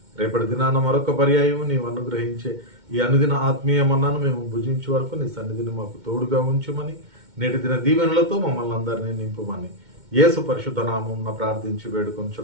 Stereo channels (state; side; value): late; left; 2.2 ms